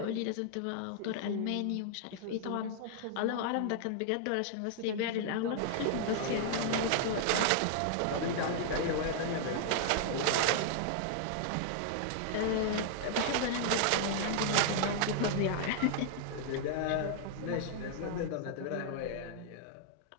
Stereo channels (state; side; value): different; both; correlation -0.01